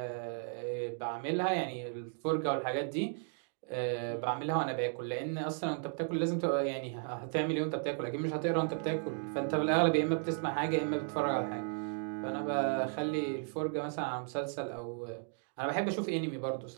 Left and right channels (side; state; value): left; silent; 55 dB below the other